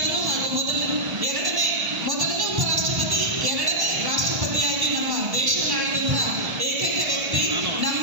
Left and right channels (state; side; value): late; left; 1.1 ms